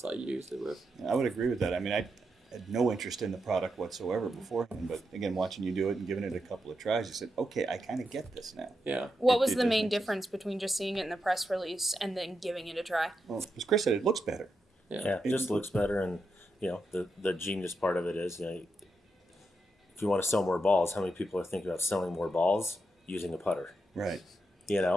I used it with. I would agree with that. I mean, I had no interest in the product whatsoever beforehand, but again, watching you do it and giving it a couple of tries, you said, okay, I kind of get this now. Yeah. What was it the does main make sense. difference between just seeing it in the press release and then giving it a try? Well, as Chris said, it looks better. Yeah, it just looks better, and the genius part of it is, if you want to sell more balls, how many people are thinking about selling more balls using a putter? Right.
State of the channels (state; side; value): normal; both; correlation 0.85